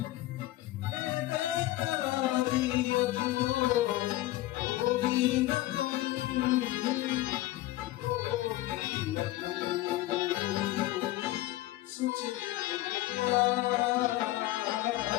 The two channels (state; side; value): quieter; right; 16.7 dB